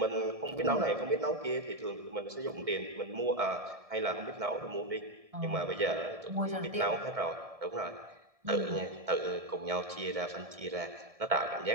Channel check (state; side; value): late; left; 1.7 ms